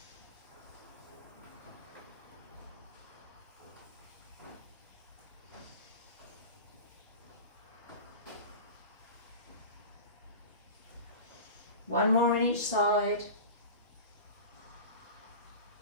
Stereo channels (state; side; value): inverted; both; correlation -0.32